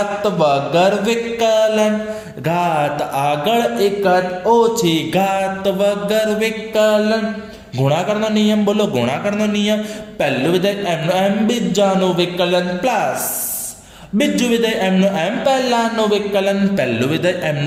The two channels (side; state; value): both; identical; correlation 1.00